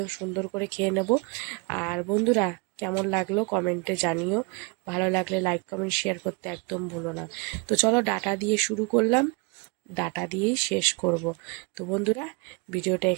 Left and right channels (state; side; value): quieter; left; 29.8 dB